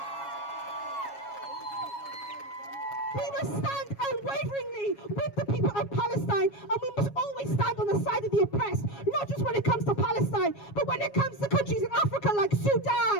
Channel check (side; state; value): right; late; 7.2 ms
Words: We must stand unwaveringly with the people of Palestine, and we must always stand on the side of the oppressed, not just when it comes to Palestine, but when it comes to countries in Africa like